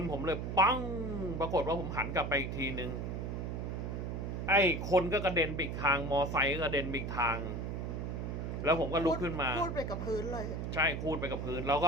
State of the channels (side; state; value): right; noise; hum, 4 dB below the sound